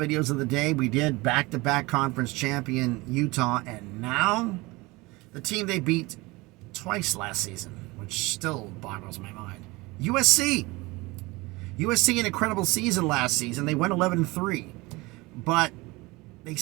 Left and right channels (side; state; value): left; quieter; 22.9 dB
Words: of the day. We did back-to-back conference champion Utah, and now the team they beat twice last season, which still boggles my mind. USC. USC, an incredible season last season. They went 11-3, but they